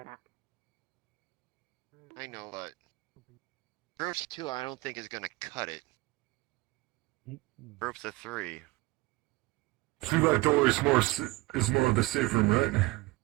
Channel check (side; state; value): left; quieter; 21.8 dB